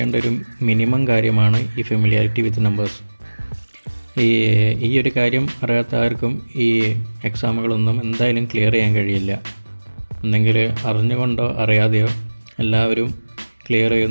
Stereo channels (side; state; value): both; inverted; correlation -1.00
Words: ഒരു മിനിമം കാര്യമാണ് ഈ ഫെമിലിയാരിറ്റി വിത്ത് നമ്പേഴ്സ്. ഈ ഒരു കാര്യം അറിയാത്ത ആർക്കും ഈ എക്സാമുകളൊന്നും എന്തായാലും ക്ലിയർ ചെയ്യാൻ കഴിയില്ല. ഒന്നെങ്കിൽ അറിഞ്ഞുകൊണ്ടോ അറിയാതെയോ എല്ലാവരും ക്ലിയർ